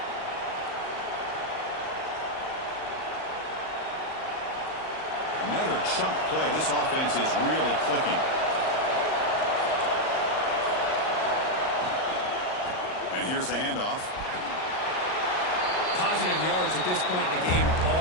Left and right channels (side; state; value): right; late; 38 ms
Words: Another chunk play. This offense is really clicking. And here's the handoff. Positive yards at this point in the game are